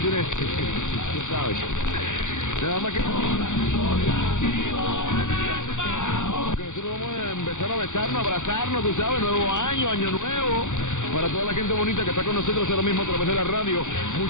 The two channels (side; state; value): right; late; 0.85 ms